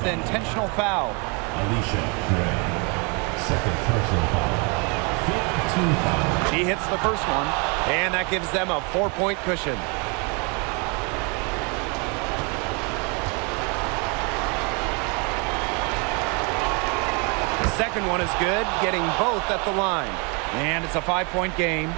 the intentional foul. Alicia Gray. Second personal foul. 15 foul. She hits the first one, and that gives them a 4-point cushion. The second one is good, getting both at the line. And it's a 5-point game.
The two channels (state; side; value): quieter; left; 32.6 dB